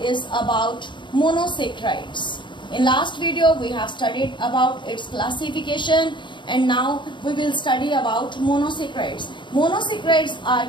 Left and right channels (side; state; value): right; late; 0.23 ms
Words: about monosaccharides. In last video we have studied about its classification, and now we will study about monosaccharides. Monosaccharides are